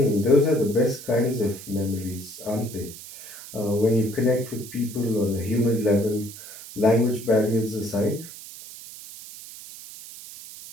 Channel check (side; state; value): right; noise; hiss, 15 dB below the sound